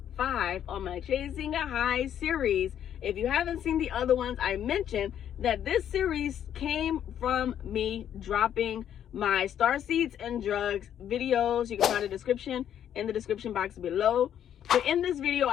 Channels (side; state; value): right; quieter; 9.9 dB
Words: 5 on my Chasing a High series. If you haven't seen the other ones, I mentioned that this series came from me dropping my Starseeds and drugs videos. You can find a description in the description box below. But in this video,